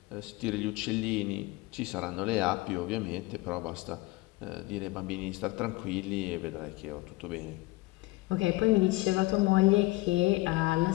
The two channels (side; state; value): right; quieter; 21.5 dB